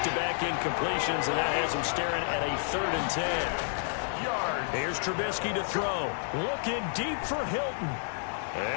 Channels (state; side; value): silent; right; digital silence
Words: incompletions, and that has him staring at a 3rd and 10. Here's Trubisky to throw. Looking deep for Hilton.